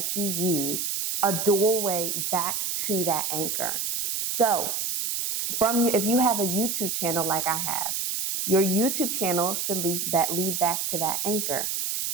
you use a doorway back to that anchor. So if you have a YouTube channel like I have, your YouTube channel should lead back to that anchor.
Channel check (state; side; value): noise; right; hiss, 1 dB below the sound